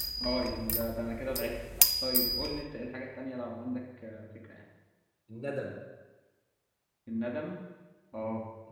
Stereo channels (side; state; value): both; identical; correlation 1.00